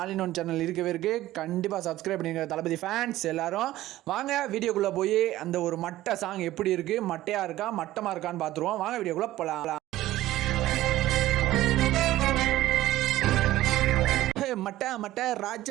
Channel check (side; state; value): left; quieter; 15.4 dB